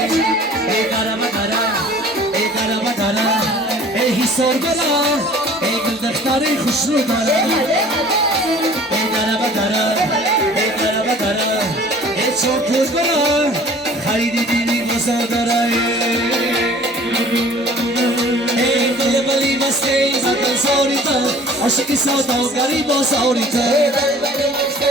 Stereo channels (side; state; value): both; normal; correlation 0.49